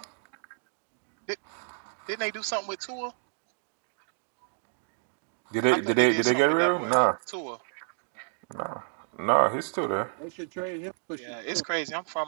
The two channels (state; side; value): silent; left; digital silence